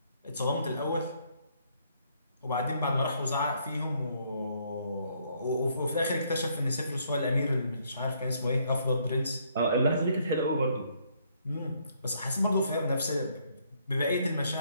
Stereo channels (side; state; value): both; inverted; correlation -0.69